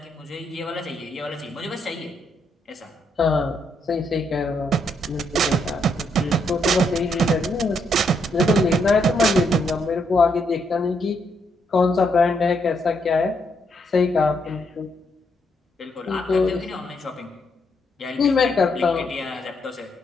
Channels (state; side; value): normal; both; correlation 0.76